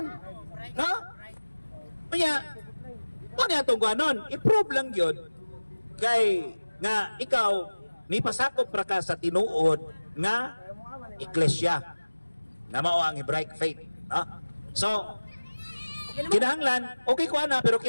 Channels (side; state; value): both; inverted; correlation -1.00